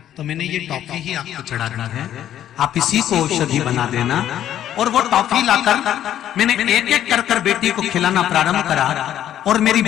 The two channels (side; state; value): right; quieter; 11.3 dB